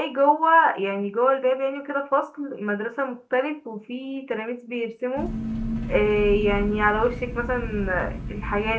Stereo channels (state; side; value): identical; both; correlation 1.00